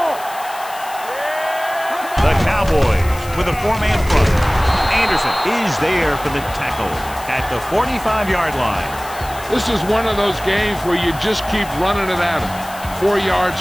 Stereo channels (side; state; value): left; noise; hiss, 16 dB below the sound